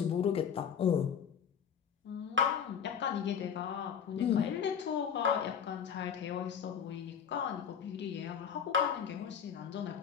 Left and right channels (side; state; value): right; quieter; 7.7 dB